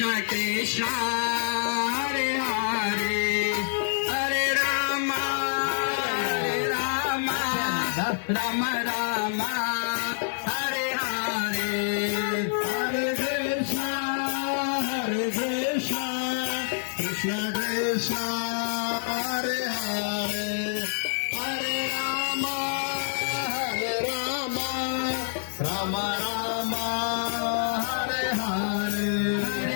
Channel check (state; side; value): silent; right; 60 dB below the other